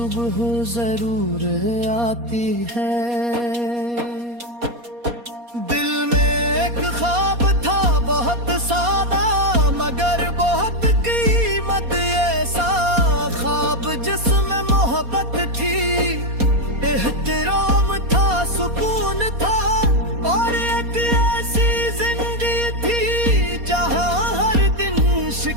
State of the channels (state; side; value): late; left; 4.2 ms